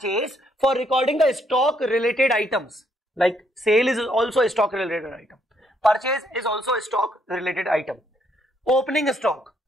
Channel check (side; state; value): both; normal; correlation 0.72